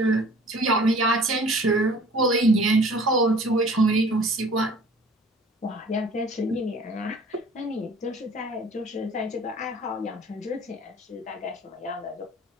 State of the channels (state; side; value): normal; both; correlation 0.49